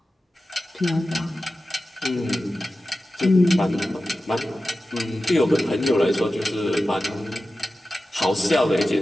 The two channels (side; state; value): both; normal; correlation 0.94